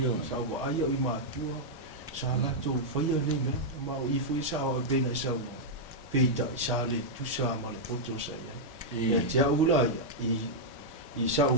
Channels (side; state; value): both; normal; correlation -0.05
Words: Sa ua aia i maatua. Sa lato whaia nei mea. Ma o i fo i sa o e pena i sa ua. Peita i sa le tusa ma le poto sa iai. Ia te aula ia. I sa o